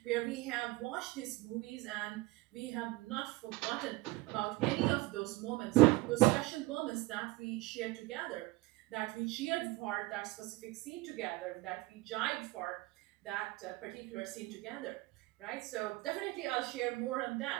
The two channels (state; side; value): quieter; left; 20.3 dB